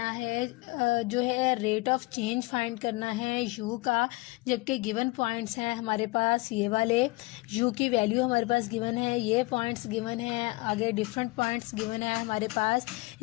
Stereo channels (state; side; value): quieter; right; 23.0 dB